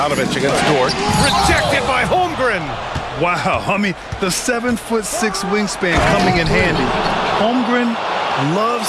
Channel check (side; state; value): both; identical; correlation 1.00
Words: against Dort. Rejected by Holmgren. Wow, I mean, the 7'6" wingspan coming in handy. Holmgren loves